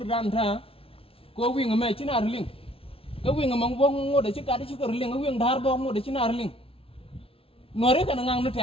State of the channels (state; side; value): late; right; 0.27 ms